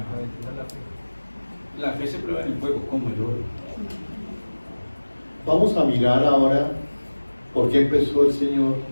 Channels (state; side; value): inverted; both; correlation -1.00